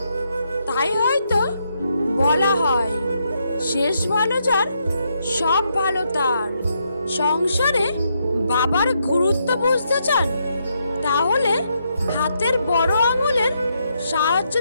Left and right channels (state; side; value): inverted; both; correlation -0.78